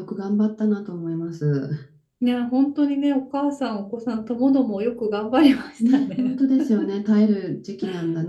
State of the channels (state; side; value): identical; both; correlation 1.00